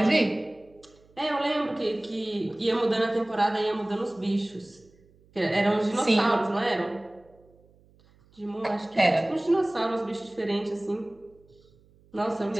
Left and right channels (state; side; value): noise; right; hum, 30 dB below the sound